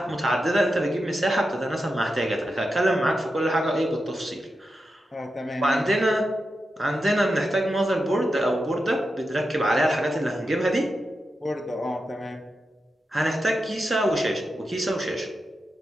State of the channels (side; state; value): both; normal; correlation 0.89